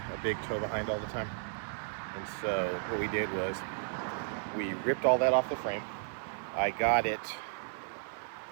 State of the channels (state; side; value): silent; left; digital silence